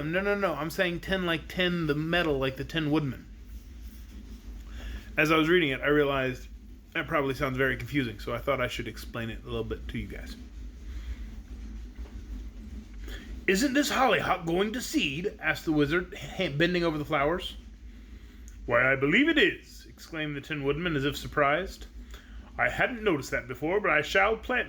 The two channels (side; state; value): both; identical; correlation 1.00